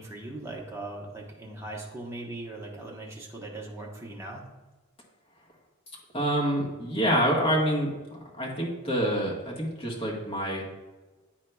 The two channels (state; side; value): normal; both; correlation 0.27